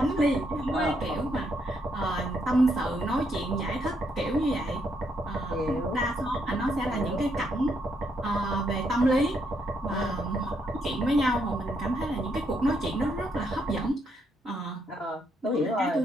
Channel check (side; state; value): both; normal; correlation 0.76